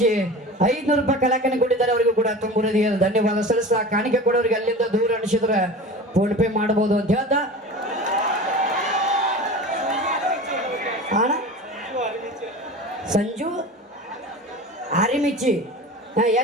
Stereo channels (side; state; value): both; normal; correlation 0.35